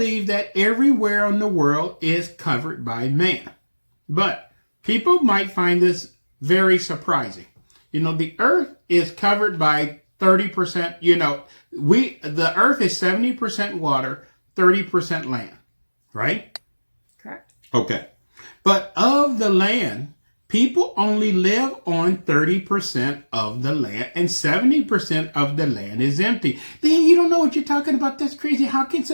that everywhere in the world is covered by man. But people might find this very surprising. The earth is covered by 30%, the earth is 70% water, 30% land, right? Correct. Okay. But of the land, people only live on 30% of the land and 70% of the land is empty. Then you don't know what you're talking about. That's crazy. How can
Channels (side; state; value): both; inverted; correlation -1.00